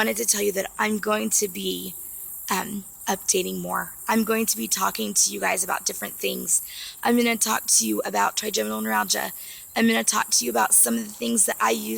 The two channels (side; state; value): both; identical; correlation 1.00